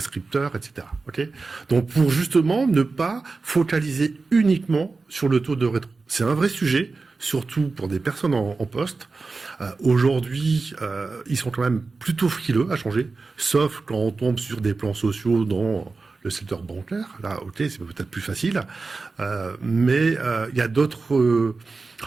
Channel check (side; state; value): left; quieter; 4.0 dB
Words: etc. Okay. Donc pour justement ne pas focaliser uniquement sur le taux de rétro. C'est un vrai sujet, surtout pour des personnes en poste. Aujourd'hui, ils sont quand même plutôt frileux à changer, sauf quand on tombe sur des plans sociaux dans le secteur bancaire. Là, ok, c'est peut-être plus facile, mais il y a d'autres